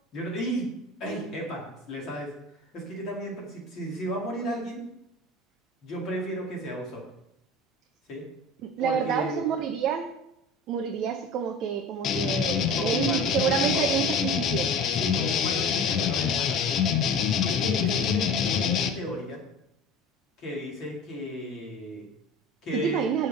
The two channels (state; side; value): normal; both; correlation 0.36